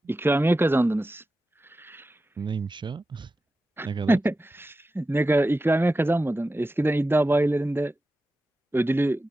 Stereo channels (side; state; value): both; normal; correlation 0.93